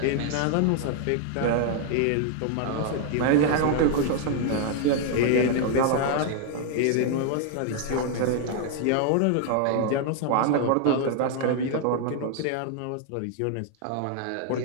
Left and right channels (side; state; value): both; different; correlation 0.00